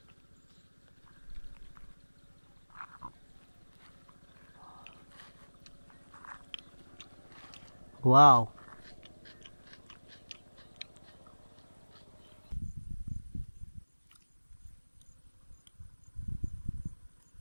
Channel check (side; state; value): both; inverted; correlation -1.00